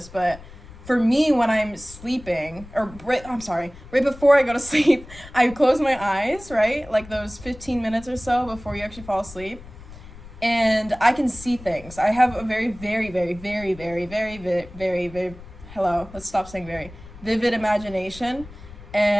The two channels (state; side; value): noise; left; rumble, 18 dB below the sound